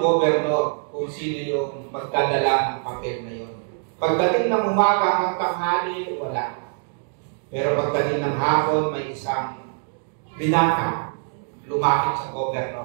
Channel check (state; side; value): silent; left; digital silence